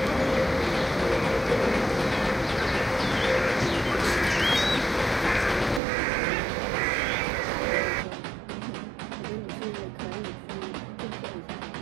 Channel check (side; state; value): left; drops out; at 5.8 s